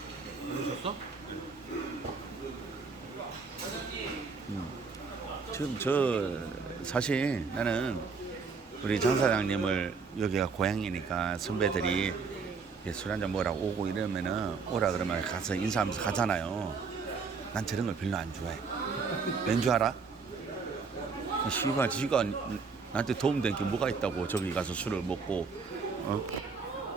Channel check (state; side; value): quieter; left; 5.1 dB